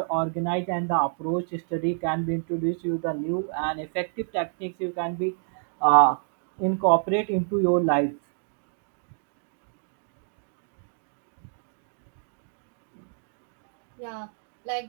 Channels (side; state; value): left; silent; digital silence